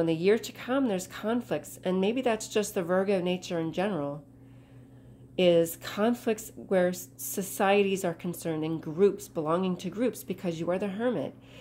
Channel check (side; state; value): both; identical; correlation 1.00